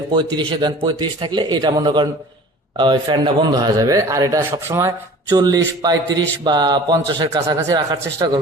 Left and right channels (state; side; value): normal; both; correlation 0.44